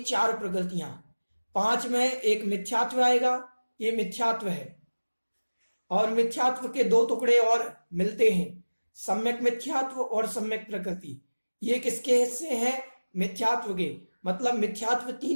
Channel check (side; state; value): both; inverted; correlation -1.00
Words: प्रकृतियां। 5 में एक मिथ्यात्व आएगा, ये मिथ्यात्व है। और मिथ्यात्व के 2 टुकड़े और मिलते हैं, सम्यक मिथ्यात्व और सम्यक प्रकृति। ये किसके हिस्से हैं? मिथ्यात्व के। मतलब मिथ्यात्व